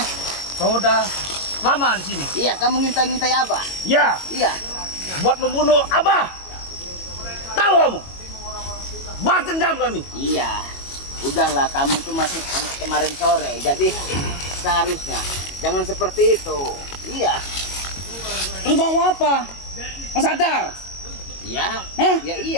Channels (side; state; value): right; late; 22 ms